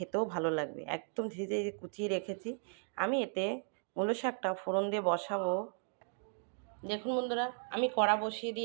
ভালো লাগবে। একদম ঝিরিঝিরি কুচিয়ে রেখেছি। আমি এতে মূলো শাকটা ফোড়ন দিয়ে বসাবো। দেখুন বন্ধুরা, আমি কড়া বসিয়ে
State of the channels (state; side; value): silent; left; 54 dB below the other